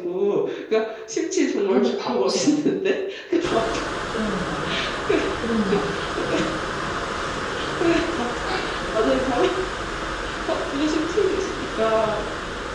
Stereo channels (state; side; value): identical; both; correlation 1.00